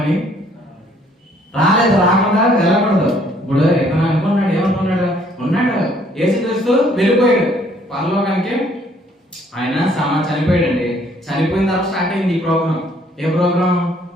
రాలేదు. రాకుండా వెళ్ళకూడదు. ఇప్పుడు ఎతను అనుకున్నాడు, ఏమనుకున్నాడు? ఉన్నాడు యేసుక్రీస్తు వెళ్ళిపోయాడు పరలోకానికి. ఆయన చనిపోయాడండి. చనిపోయిన తర్వాత స్టార్ట్ అయింది ఈ ప్రోగ్రామ్. ఏ ప్రోగ్రామ్?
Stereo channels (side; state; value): both; normal; correlation 0.63